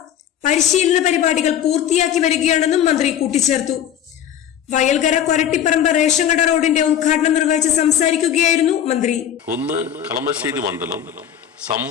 പരിശീലന പരിപാടികൾ പൂർത്തിയാക്കി വരികയാണെന്നും മന്ത്രി കൂട്ടിച്ചേർത്തു. വയൽകര കൊരട്ടിപ്പറമ്പ് റേഷൻ കട റോഡിന്റെ ഉദ്ഘാടനം നിർവഹിച്ച് സംസാരിക്കുകയായിരുന്നു മന്ത്രി. ഒന്ന്, കളമശ്ശേരി മണ്ഡലം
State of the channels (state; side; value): quieter; right; 9.8 dB